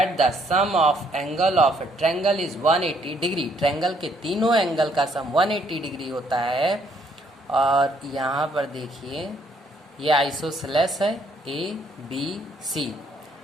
the sum of angle of a triangle is 180 degree. Triangle के तीनों angle का सम 180 degree होता है। और यहाँ पर देखिए ये आइसोसेलेस है ABC।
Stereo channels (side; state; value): both; normal; correlation 0.68